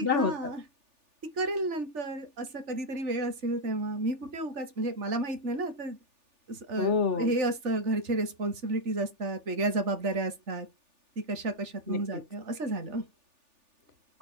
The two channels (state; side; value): late; left; 3.4 ms